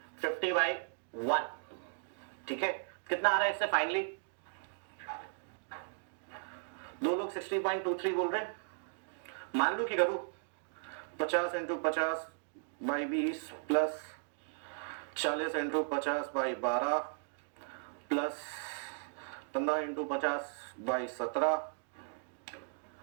50/1। ठीक है, कितना आ रहा है इससे फाइनली? दो लोग 60.23 बोल रहे हैं। मान लो कि करूं 50 into 50/20 plus 40 into 50/12 plus 15 into 50/17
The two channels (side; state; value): left; silent; digital silence